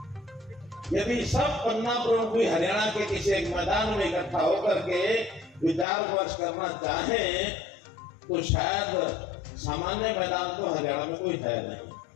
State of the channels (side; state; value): right; drops out; at 5.9 s